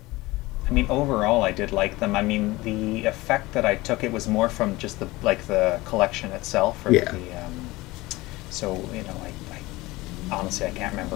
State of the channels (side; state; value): right; quieter; 20.3 dB